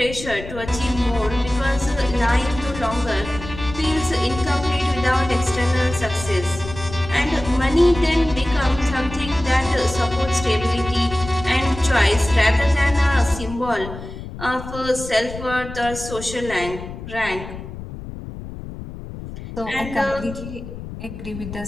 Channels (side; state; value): left; noise; rumble, 11 dB below the sound